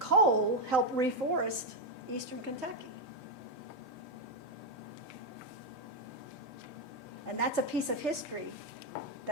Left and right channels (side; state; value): both; normal; correlation 0.04